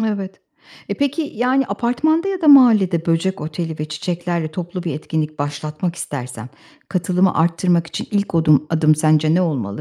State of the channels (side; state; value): both; identical; correlation 1.00